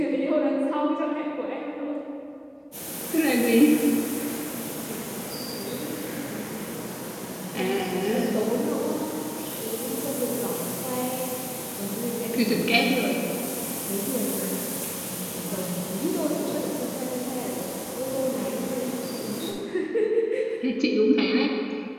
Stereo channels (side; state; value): both; identical; correlation 1.00